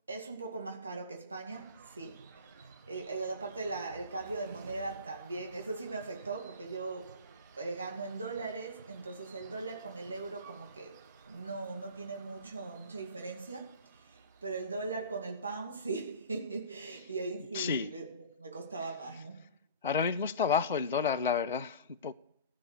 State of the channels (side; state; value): both; inverted; correlation -0.37